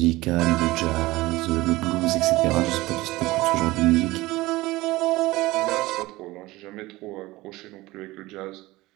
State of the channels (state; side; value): quieter; left; 19.5 dB